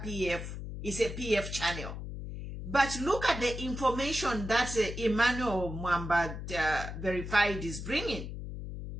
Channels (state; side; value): noise; left; hum, 7 dB below the sound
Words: PF. It's a PF channel. But look at the information that Emmanuel Mwamba verified is bringing.